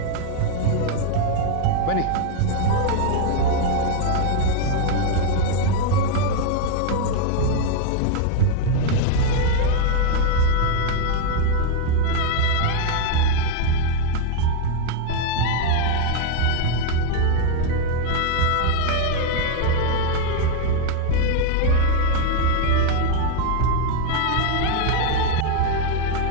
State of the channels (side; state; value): both; different; correlation 0.00